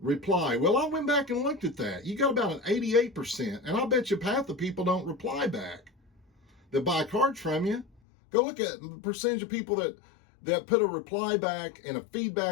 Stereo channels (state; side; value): drops out; right; at 7.9 s